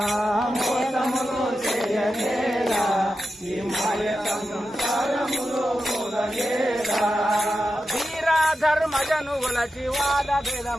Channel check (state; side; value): normal; both; correlation 0.90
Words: మోసములు చేయనేల ఈ మాయ సంసారములు గూలనేల ధర్మజను గులచి వాద